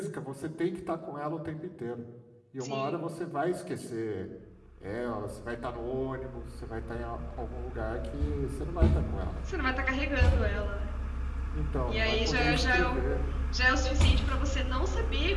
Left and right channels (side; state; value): both; identical; correlation 1.00